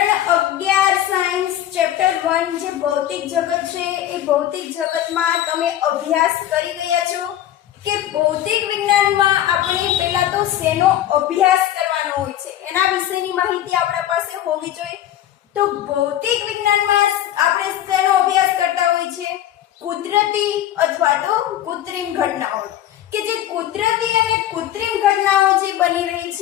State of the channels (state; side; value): quieter; right; 12.2 dB